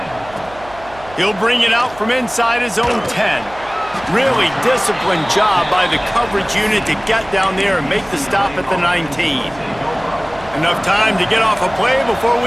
He'll bring it out from inside his own 10. Really disciplined job by the coverage unit to get down there and make the stop at the 19. Enough time to get off a play before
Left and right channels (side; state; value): right; noise; hum, 20 dB below the sound